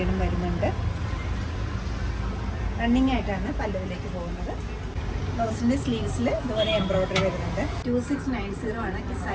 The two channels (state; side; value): identical; both; correlation 1.00